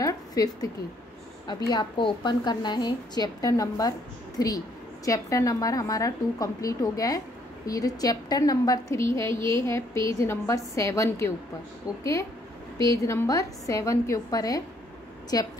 5th की। अभी आपको ओपन करना है चैप्टर नंबर 3। चैप्टर नंबर हमारा 2 कंप्लीट हो गया है। ये जो चैप्टर नंबर 3 है ये है पेज नंबर 7 के ऊपर। ओके, पेज नंबर 7 के ऊपर है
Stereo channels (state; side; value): normal; both; correlation 0.67